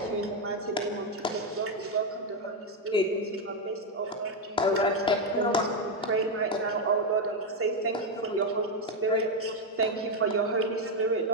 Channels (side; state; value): both; normal; correlation 0.05